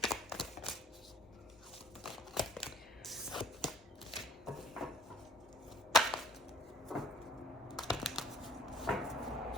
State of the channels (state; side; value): normal; both; correlation 0.54